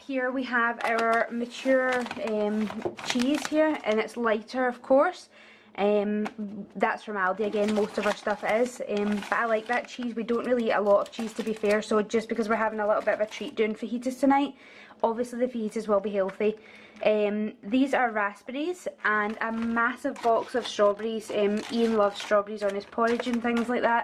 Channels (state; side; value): identical; both; correlation 1.00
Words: we have our mature cheese here, and it's lighter of course. That's from Aldi again, most of our stuff is, but I like that cheese. We don't really eat a lot of cheese, to be fair, so just because we're having a little bit of a treat doing fajitas tonight, obviously the fajitas will be healthy. These are raspberries and a massive box of strawberries. Ian loves strawberries on his porridge and things like